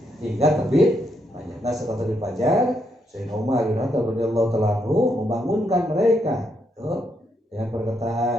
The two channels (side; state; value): both; normal; correlation 0.78